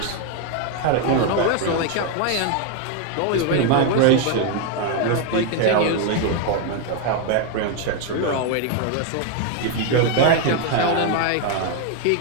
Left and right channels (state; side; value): different; both; correlation 0.01